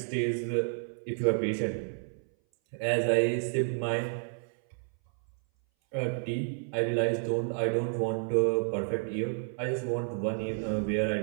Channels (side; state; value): left; silent; 57 dB below the other